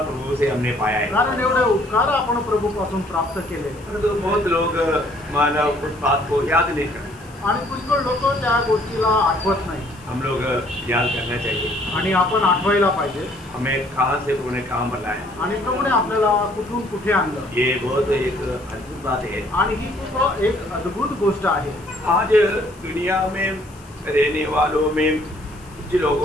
प्रभु से हमने पाया है, कारण एवढे उपकार आपण प्रभू पासून प्राप्त केले। तो बहुत लोग मानव उस बात को याद नहीं करते आणि पुष्कळ लोक त्या गोष्टीला आठवत नाही। हम लोग याद करना चाहिए आणि आपण आठवायला पाहिजे हमें कहाँ से प्रभु ने काम बनाया आणि प्रभूने आपल्याला कुठून कुठे आणलं। ये बहुत एक अद्भुत बात है आणि ही खूप एक अद्भुत गोष्ट आहे। आज दुनिया में रहने वालों में कुछ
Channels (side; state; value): left; noise; hiss, 26 dB below the sound